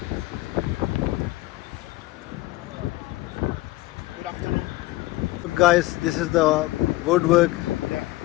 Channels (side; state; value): right; quieter; 19.0 dB